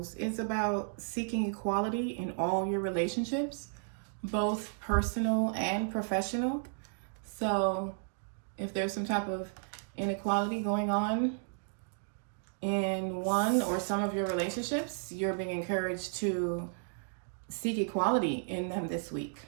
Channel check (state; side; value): silent; left; digital silence